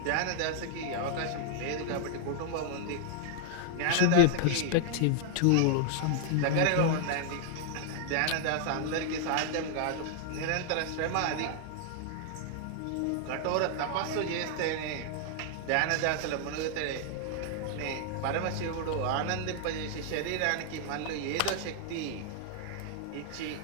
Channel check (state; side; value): different; both; correlation -0.01